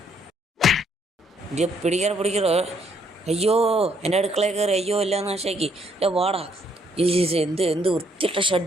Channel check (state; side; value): normal; both; correlation 0.69